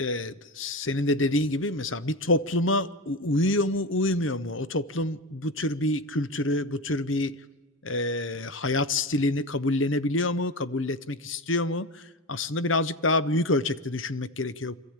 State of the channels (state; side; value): normal; both; correlation 0.23